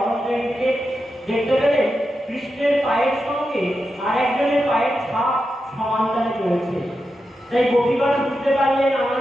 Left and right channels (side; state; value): both; normal; correlation 0.88